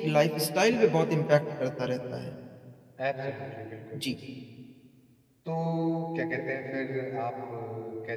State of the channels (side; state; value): both; identical; correlation 1.00